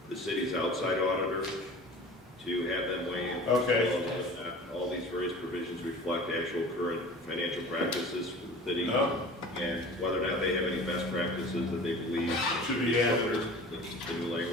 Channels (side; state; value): both; normal; correlation 0.41